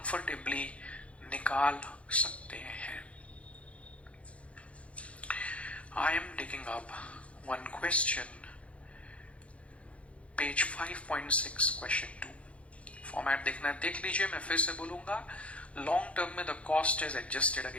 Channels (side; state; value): right; late; 0.062 ms